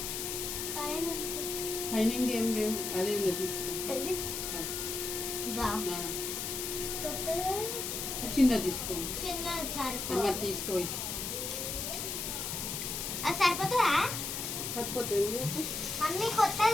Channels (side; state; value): left; noise; hiss, 3 dB below the sound